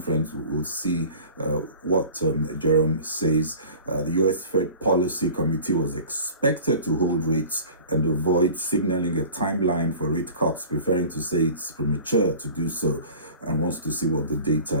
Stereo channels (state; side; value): inverted; both; correlation -0.42